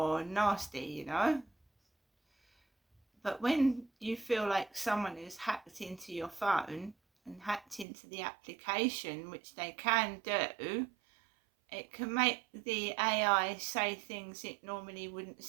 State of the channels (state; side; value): drops out; left; at 7.9 s